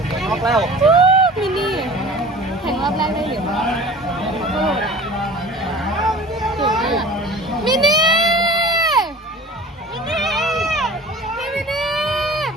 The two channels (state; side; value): normal; both; correlation 0.42